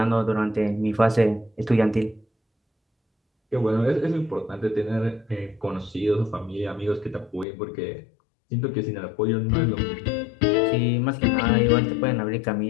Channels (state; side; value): drops out; right; at 7.5 s